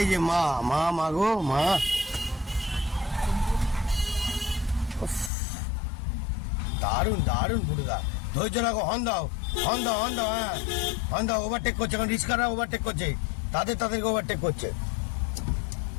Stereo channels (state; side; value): drops out; right; at 5.3 s